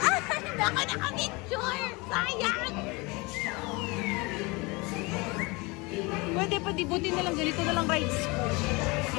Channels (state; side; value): quieter; right; 25.9 dB